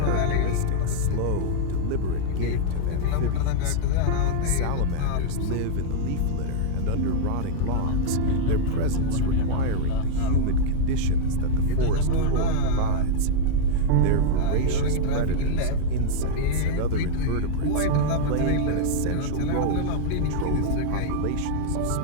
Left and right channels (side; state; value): both; different; correlation -0.01